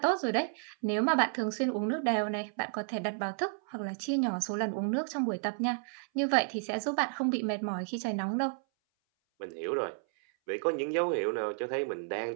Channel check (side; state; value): left; silent; 57 dB below the other